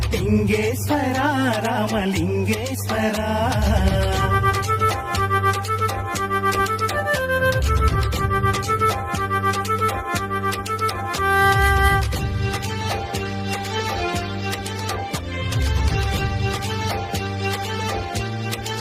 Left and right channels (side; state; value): both; identical; correlation 1.00